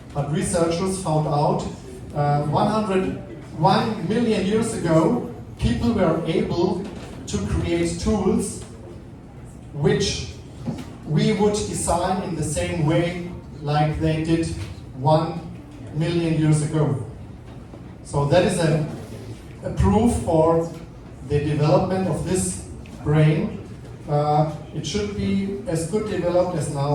but researchers found out 101 million years ago, people were able to create tools which we would design in the same way like they did 1 million years ago. So that is a proof for the development of this brain. It should be as good developed as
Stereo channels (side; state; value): both; identical; correlation 1.00